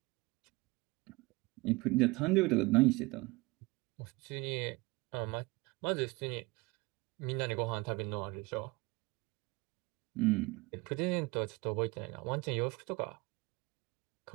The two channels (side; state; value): left; quieter; 23.7 dB